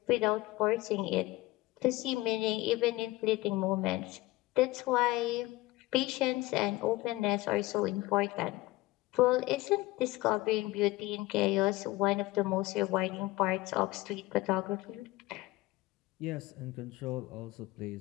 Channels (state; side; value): quieter; right; 19.1 dB